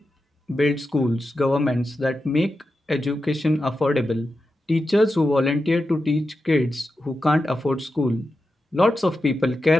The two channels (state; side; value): normal; both; correlation 0.90